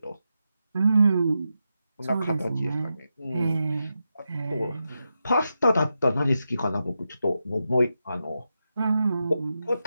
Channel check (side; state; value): both; inverted; correlation -0.88